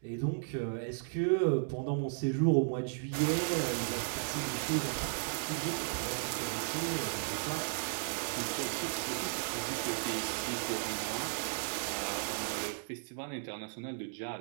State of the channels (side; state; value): left; silent; digital silence